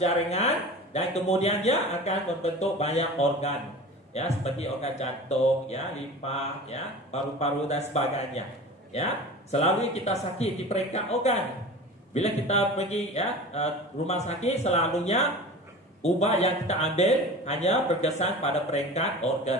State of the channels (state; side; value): normal; both; correlation 0.36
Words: dan kemudian dia akan membentuk banyak organ. Ya, seperti organ jantung, ya, limfa, ya, paru-paru dan sebagainya. Ya, selalu kita sakit di peringkat organ. Bila kita pergi ya rumah sakit, selalunya ubat yang kita ambil hanya berkesan pada peringkat